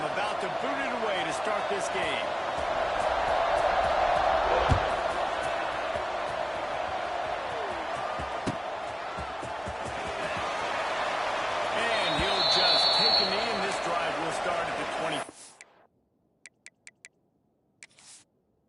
about to boot it away to start this game.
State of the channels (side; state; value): both; identical; correlation 1.00